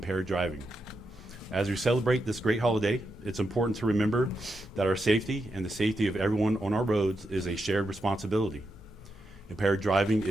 driving. As we celebrate this great holiday, it's important to remember that our safety and the safety of everyone on our roads is a shared responsibility. Impaired driving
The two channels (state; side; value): normal; both; correlation 0.85